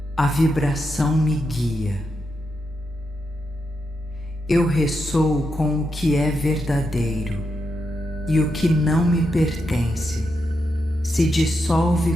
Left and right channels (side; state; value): both; normal; correlation 0.84